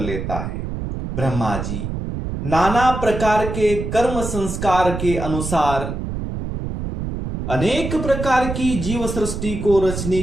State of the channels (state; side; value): noise; right; rumble, 5 dB below the sound